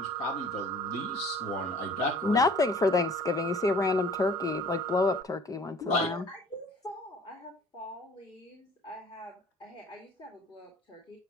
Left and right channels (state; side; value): normal; both; correlation 0.50